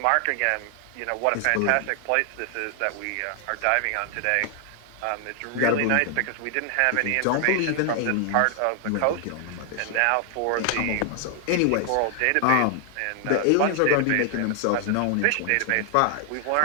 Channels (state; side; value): different; both; correlation 0.00